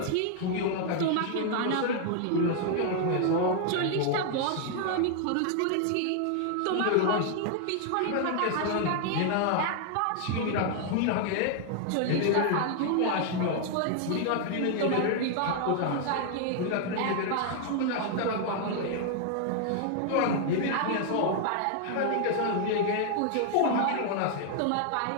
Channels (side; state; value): both; different; correlation 0.00